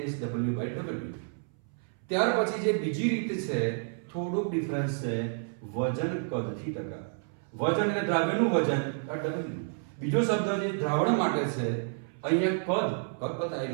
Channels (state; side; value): silent; left; 58 dB below the other